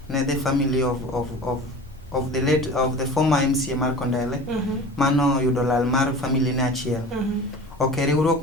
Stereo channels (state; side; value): normal; both; correlation 0.37